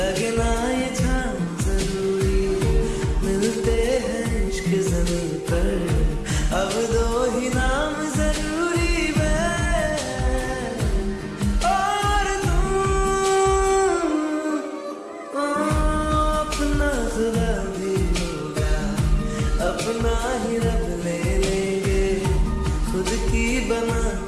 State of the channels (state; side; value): identical; both; correlation 1.00